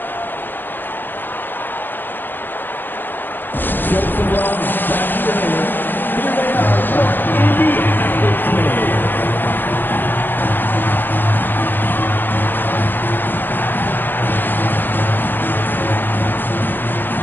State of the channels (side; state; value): right; late; 0.093 ms